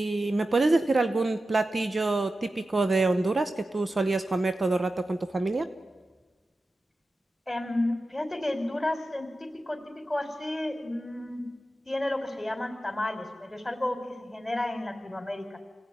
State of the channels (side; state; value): both; normal; correlation 0.93